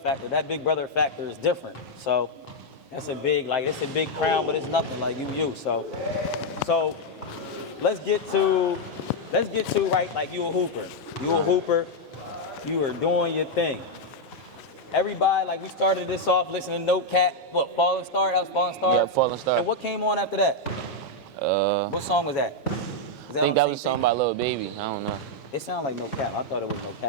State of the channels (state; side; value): late; right; 5.6 ms